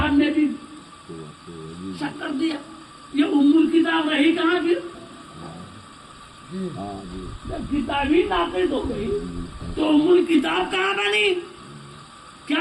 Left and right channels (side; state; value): both; identical; correlation 1.00